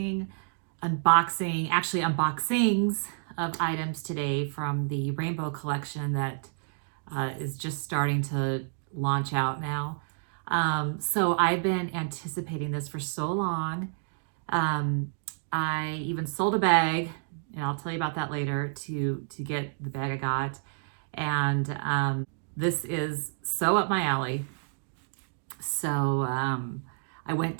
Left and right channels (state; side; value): silent; left; digital silence